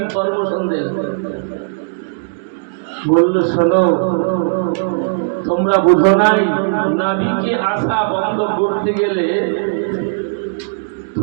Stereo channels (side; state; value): left; silent; digital silence